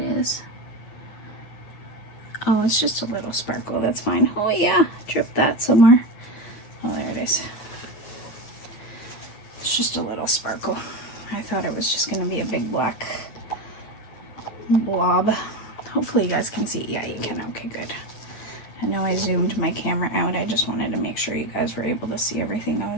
is. Oh, it's just a little sparkle. That's fine. Oh yeah, drip that somewhere. Oh, there it is. It's just a little sparkle. I thought it was just going to be a big black blob. Hopefully you guys can see. Yeah, you can. Okay, good. I know I zoomed my camera out. I just wanted to make sure you guys were able to see everything I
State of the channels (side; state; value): right; late; 9.5 ms